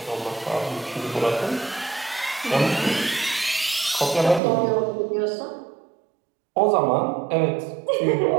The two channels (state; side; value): drops out; left; at 4.4 s